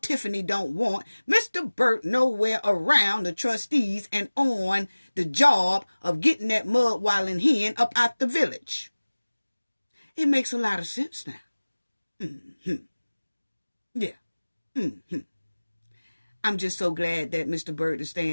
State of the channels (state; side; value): inverted; both; correlation -1.00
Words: don't want Mr. Burt nowhere around the trustees and on the job of getting that mud wallin' hen up out the village. It makes a lot of sense now. Yeah. I'm just so glad that Mr. Burt is